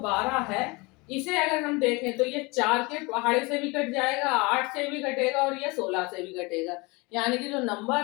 है, इसे अगर हम देखें तो ये 4 के पहाड़े से भी कट जाएगा, 8 से भी कटेगा, और ये 16 से भी कटेगा। यानी कि जो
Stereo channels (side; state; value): right; quieter; 26.0 dB